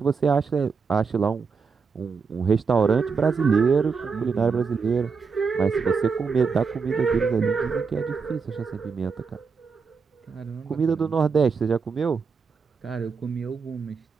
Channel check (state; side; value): quieter; left; 5.3 dB